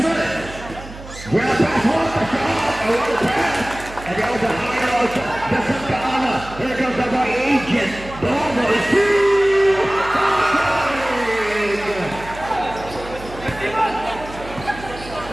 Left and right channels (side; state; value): right; noise; hum, 15 dB below the sound